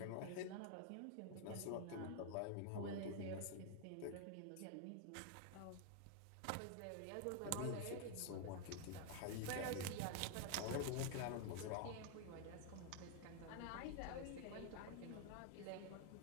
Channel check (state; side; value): different; both; correlation 0.00